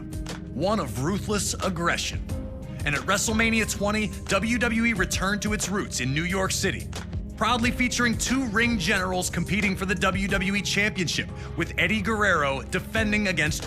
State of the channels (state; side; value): identical; both; correlation 1.00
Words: one of ruthless aggression. And at WrestleMania 20, WWE returned to its roots in New York City, proudly featuring two ring generals competing for the WWE Championship, with Eddie Guerrero defending against